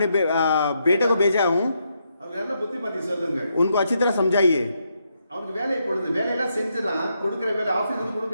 बेटे को भेजा हूँ, அவங்க நல்ல புத்திமதி சொல்லுங்கள் उनको अच्छी तरह समझाइए। அவனுக்கு வேலை பொழுது வேலையெல்லாம் செஞ்சிடலாம் கொடுக்குற வேலை ஆபீஸ்ல இருந்து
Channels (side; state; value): both; inverted; correlation -0.80